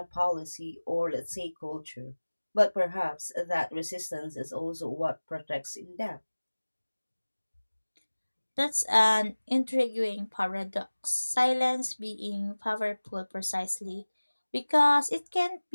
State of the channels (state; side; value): inverted; both; correlation -1.00